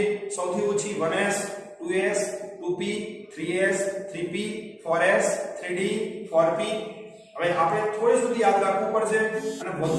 સૌથી ઓછી 1s 2s 2p 3s 3p 4s 3d 4p. હવે આપણે થોડી સુધી યાદ રાખવું પડશે, અને વધુ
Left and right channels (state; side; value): identical; both; correlation 1.00